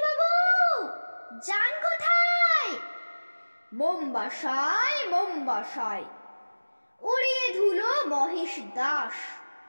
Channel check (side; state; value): both; inverted; correlation -1.00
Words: যান কোথায়? বোম্বাসায় বোম্বাসায়। উড়িয়ে ধুলো মহেশ দাস,